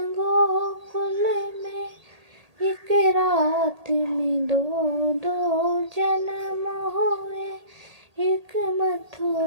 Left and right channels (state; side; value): late; left; 1.8 ms